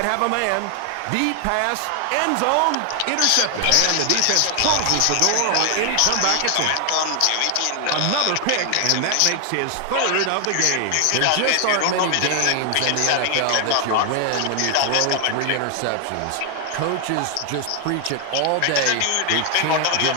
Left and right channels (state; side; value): different; both; correlation 0.00